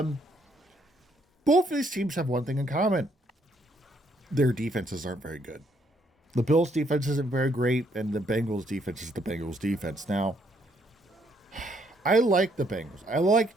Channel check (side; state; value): both; normal; correlation 0.70